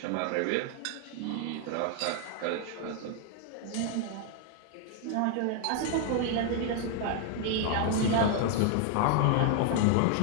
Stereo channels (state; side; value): different; both; correlation 0.00